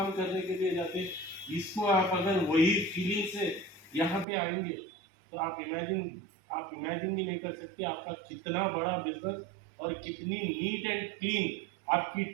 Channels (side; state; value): left; drops out; at 4.2 s